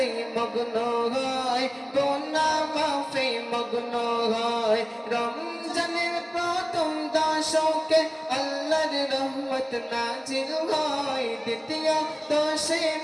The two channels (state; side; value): identical; both; correlation 1.00